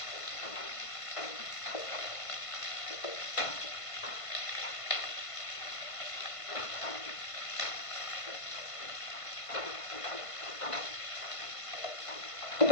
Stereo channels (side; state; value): right; late; 1.5 ms